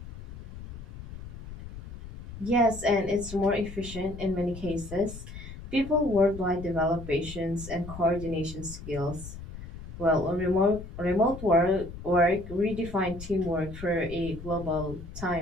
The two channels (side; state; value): left; noise; rumble, 12 dB below the sound